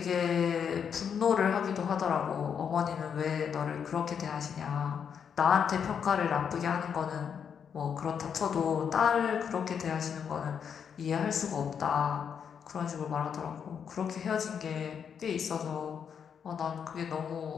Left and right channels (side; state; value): right; quieter; 7.4 dB